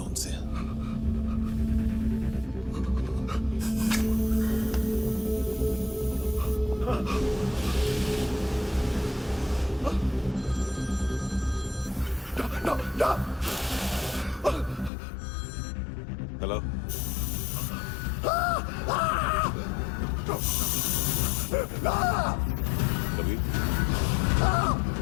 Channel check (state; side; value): drops out; right; at 14.9 s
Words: उनसे। हेलो, कभी